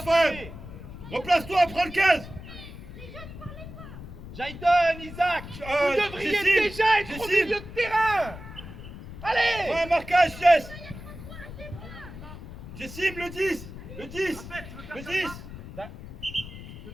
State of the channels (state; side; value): noise; left; rumble, 13 dB below the sound